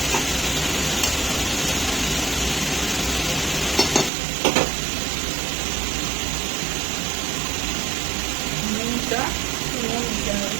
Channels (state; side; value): drops out; left; at 4.1 s